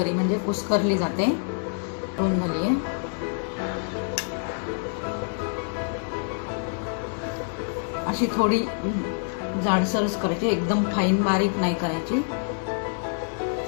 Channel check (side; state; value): right; silent; 58 dB below the other